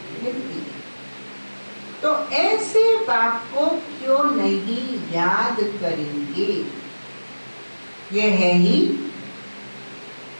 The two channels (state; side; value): inverted; both; correlation -1.00